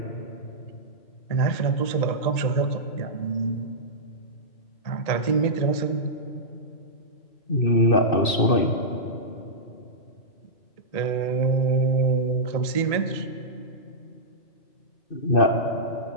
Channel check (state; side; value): late; right; 2.6 ms